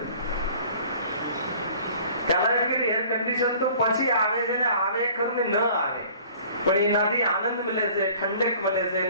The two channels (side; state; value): both; inverted; correlation -0.50